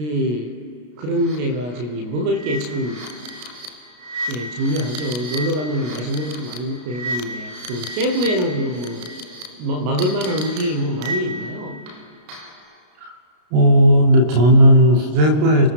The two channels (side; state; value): left; late; 33 ms